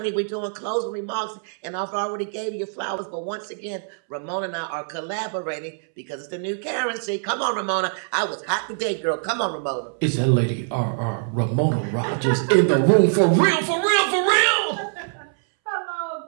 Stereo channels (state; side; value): silent; left; 63 dB below the other